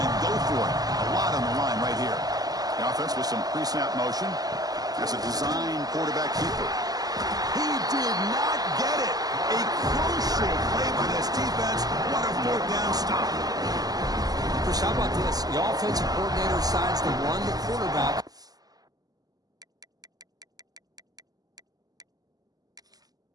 to go for it. A lot on the line right here. The offense with some pre-snap motion. As a design quarterback keeper. He did not get it. A crucial play by this defense. What a 4th down stop. Chris, how about this? The offensive coordinator decides to run the quarterback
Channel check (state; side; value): late; left; 0.18 ms